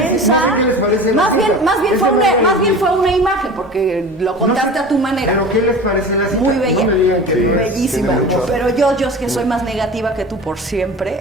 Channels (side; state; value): both; normal; correlation 0.36